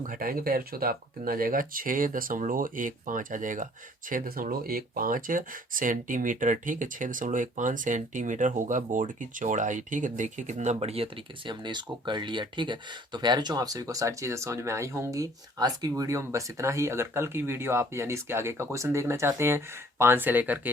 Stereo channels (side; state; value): both; normal; correlation 0.55